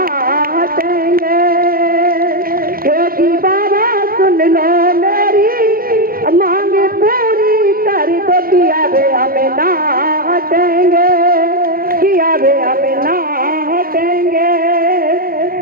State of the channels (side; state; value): left; late; 0.42 ms